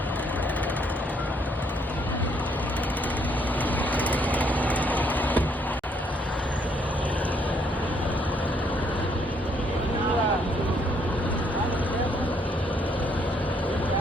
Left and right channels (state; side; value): normal; both; correlation 0.69